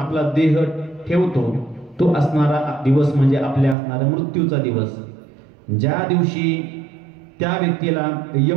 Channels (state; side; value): drops out; left; at 3.8 s